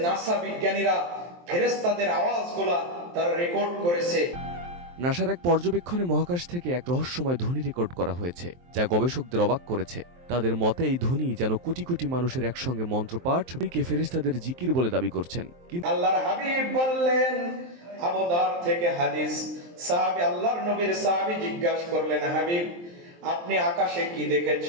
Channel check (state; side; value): late; left; 23 ms